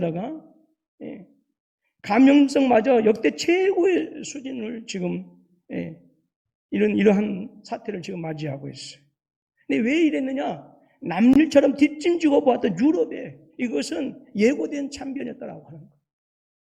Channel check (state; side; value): identical; both; correlation 1.00